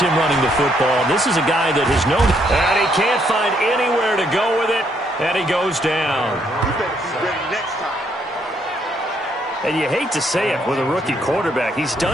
running the football. This is a guy that has known, and he can't find anywhere to go with it, and he goes down. You better be ready next time. And you hate to say it with a rookie quarterback. He's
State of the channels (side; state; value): both; normal; correlation 0.72